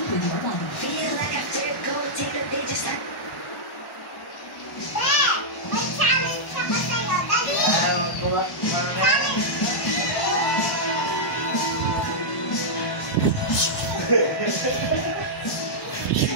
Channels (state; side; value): late; right; 1.1 ms